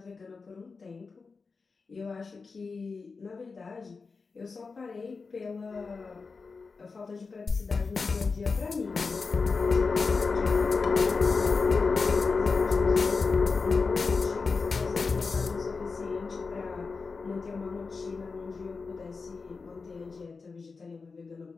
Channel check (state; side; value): quieter; right; 4.5 dB